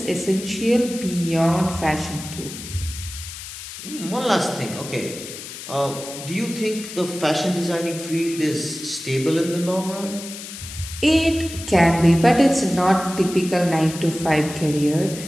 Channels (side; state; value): left; noise; hiss, 11 dB below the sound